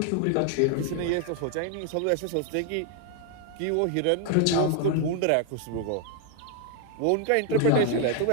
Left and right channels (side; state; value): both; different; correlation 0.00